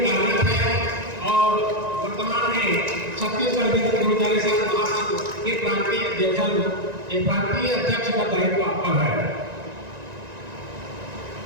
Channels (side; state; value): left; late; 1.9 ms